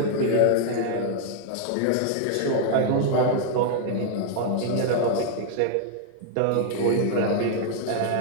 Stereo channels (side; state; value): both; different; correlation 0.00